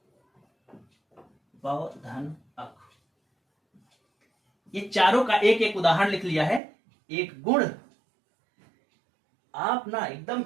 व धन अक। ये चारों का एक एक उदाहरण लिख लिया है। एक गुण, आप ना एकदम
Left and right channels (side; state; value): left; drops out; at 6.6 s